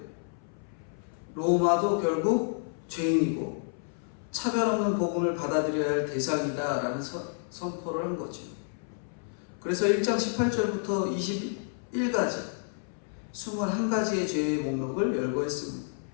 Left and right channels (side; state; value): right; silent; 58 dB below the other